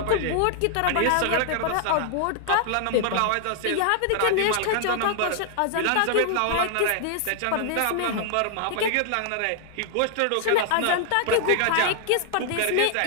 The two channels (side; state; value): both; different; correlation -0.01